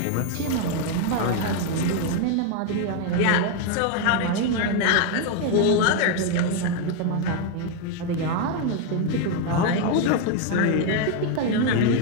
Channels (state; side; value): different; both; correlation 0.01